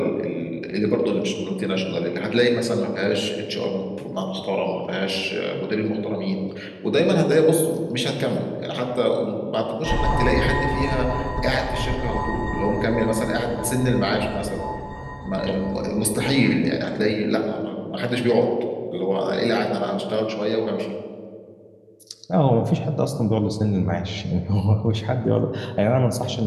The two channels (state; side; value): identical; both; correlation 1.00